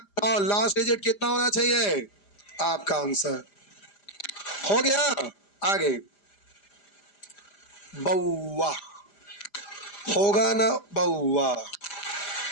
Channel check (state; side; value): late; right; 5.0 ms